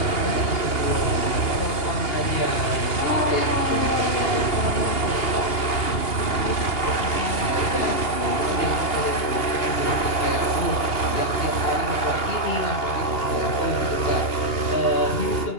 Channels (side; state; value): right; late; 2.8 ms